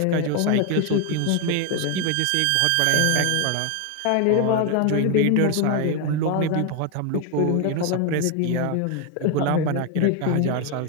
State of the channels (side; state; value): both; different; correlation 0.01